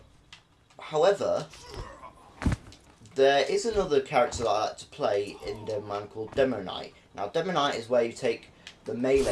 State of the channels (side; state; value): both; identical; correlation 1.00